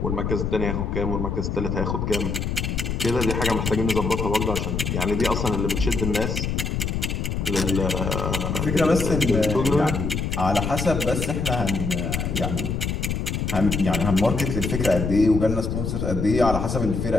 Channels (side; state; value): left; noise; rumble, 1 dB below the sound